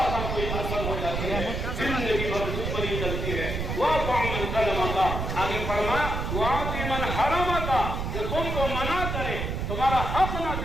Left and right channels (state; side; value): noise; right; rumble, 3 dB below the sound